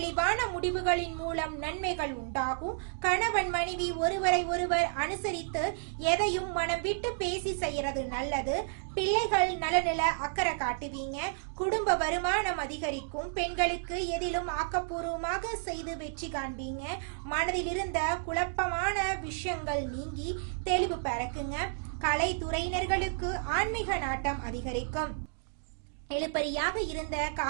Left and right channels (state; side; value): silent; left; digital silence